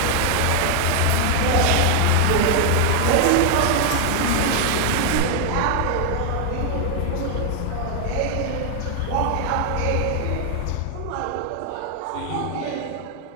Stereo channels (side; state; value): both; different; correlation 0.00